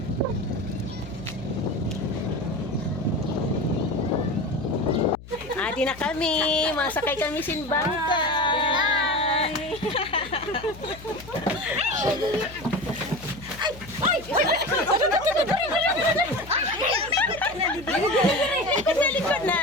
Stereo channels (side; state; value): left; noise; hum, 17 dB below the sound